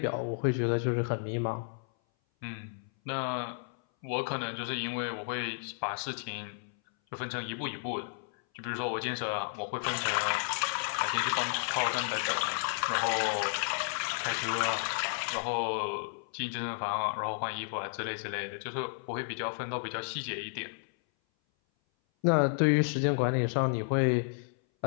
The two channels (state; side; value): silent; right; 56 dB below the other